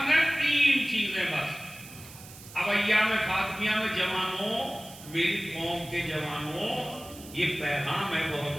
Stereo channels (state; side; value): noise; right; hiss, 17 dB below the sound